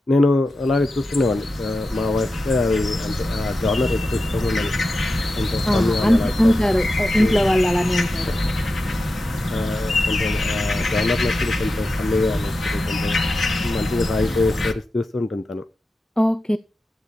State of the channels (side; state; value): both; normal; correlation 0.91